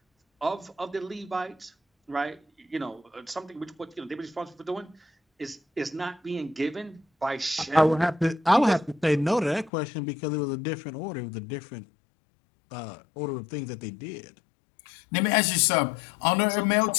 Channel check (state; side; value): drops out; right; at 9.7 s